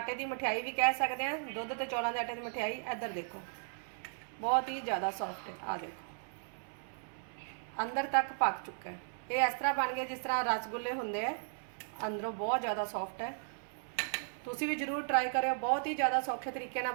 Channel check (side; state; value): left; silent; 54 dB below the other